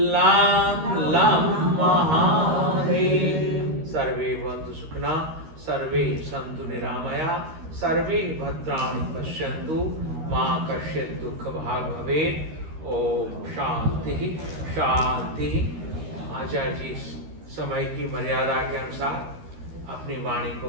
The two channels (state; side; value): late; left; 13 ms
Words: लम लम महादेव। सर्वे भवन्तु सुखिनः सर्वे सन्तु निरामया सर्वे भद्राणि पश्यन्तु मा कश्चित् दुःखभाग् भवेत्। ओम शांति शांति। आचार्य जी समय की मर्यादा के अनुसार अपनी वाणी को